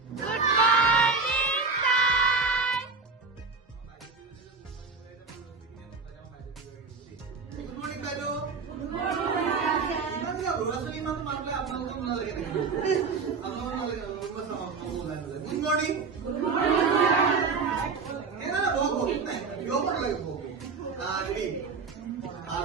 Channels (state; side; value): quieter; left; 4.7 dB